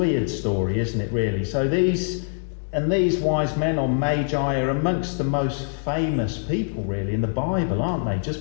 story, isn't it, really? So these wise men, or magi, are amongst the most famous people, really, in the Bible, aren't they?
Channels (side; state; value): right; silent; 63 dB below the other